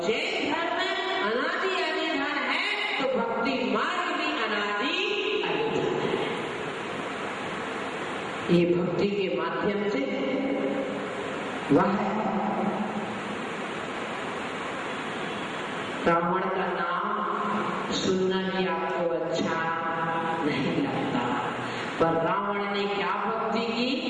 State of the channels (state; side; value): identical; both; correlation 1.00